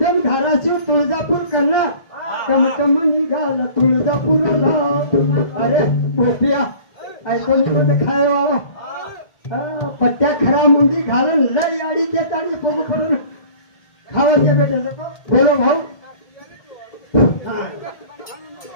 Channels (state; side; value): late; right; 1.7 ms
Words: धाराशिव तुळजापूर कर्णा तमतम निघाला तुळजापूरला अरे पोट्या ऐकून कोण खाय बाबा पट्ट्या खरा मुंडी घालून लई आडी देताडी बघू पडून खावाचे भेटे बोलो भाऊ